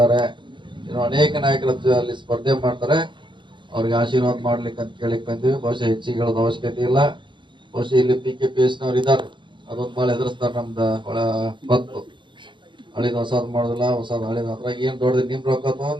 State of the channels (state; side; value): late; left; 0.23 ms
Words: ಇನ್ನು ಅನೇಕ ನಾಯಕರ ಅಲ್ಲಿ ಸ್ಪರ್ಧೆ ಮಾಡ್ತಾರೆ. ಅವ್ರಿಗೆ ಆಶೀರ್ವಾದ ಮಾಡ್ಲಿಕ್ಕೆ ಅಂತ ಕೇಳಿಕ್ ಬಂದಿವಿ. ಬಹುಶಃ ಹೆಚ್ಚಿಗೆ ಹೇಳೋದು ಅವಶ್ಯಕತೆ ಇಲ್ಲ. ಬಹುಶಃ ಇಲ್ಲಿ PKPS ನವ್ರು ಇದ್ದಾರೆ, ಅದೊಂದು ಭಾಳ ಎದುರಿಸ್ತಾರೆ. ನಮ್ದು ಒಳ ಬತ್ತು ಹಳಿದ ಹೊಸದ್ ಮಾಡುದಿಲ್ಲ, ಹೊಸದ್ ಹಳಿದ. ಅದ್ರಾಗ ಏನ್ ದೊಡ್ಡದು ನಿಮ್ ರೊಕ್ಕ